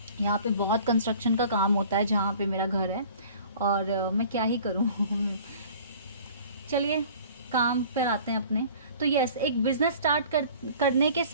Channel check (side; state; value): both; inverted; correlation -0.48